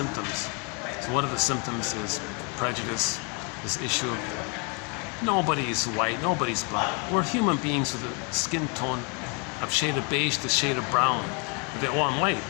So one of the symptoms is prejudice, this issue of nobody's white, nobody's black. We're human beings with a skin tone of shade of beige to shade of brown. Oh, I'm white.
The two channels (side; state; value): right; quieter; 34.1 dB